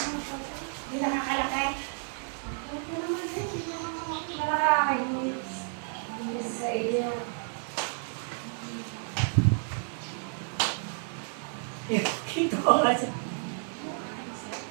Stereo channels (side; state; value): left; silent; 57 dB below the other